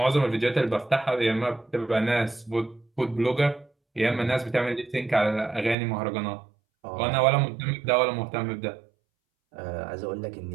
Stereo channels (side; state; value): left; drops out; at 5.8 s